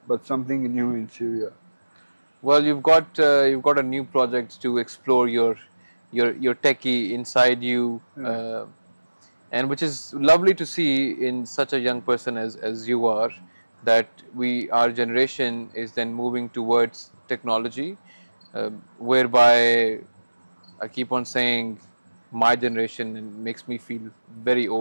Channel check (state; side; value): inverted; both; correlation -1.00